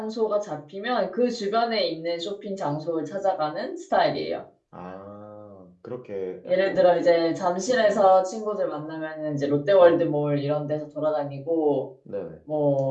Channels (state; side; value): identical; both; correlation 1.00